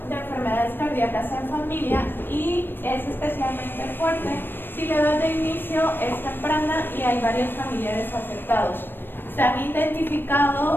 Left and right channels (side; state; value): right; late; 0.097 ms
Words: de enfermedades cardíacas en familia, y es especialmente fuerte si la edad de inicio es temprana y hay varios familiares afectados. Se han